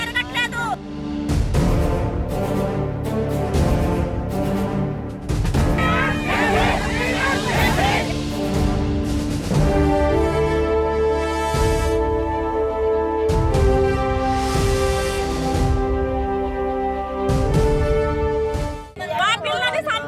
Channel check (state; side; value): identical; both; correlation 1.00